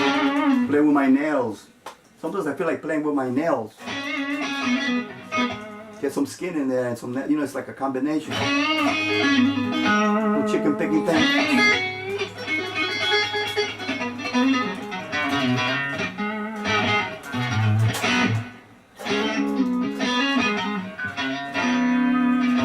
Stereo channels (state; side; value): identical; both; correlation 1.00